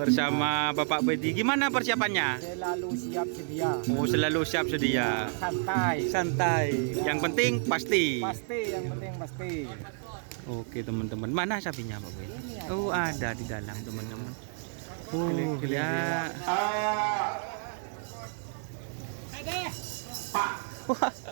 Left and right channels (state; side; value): silent; left; 58 dB below the other